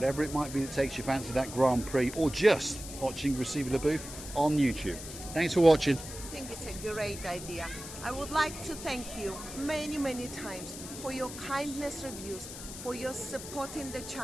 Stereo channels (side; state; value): left; noise; hiss, 11 dB below the sound